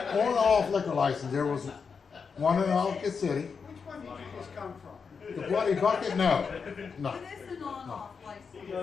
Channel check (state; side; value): quieter; right; 5.7 dB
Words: On-off liquor license. There was one in Ellicott City. Which one did you just come from? The Bloody Bucket? No. No. It is an on-off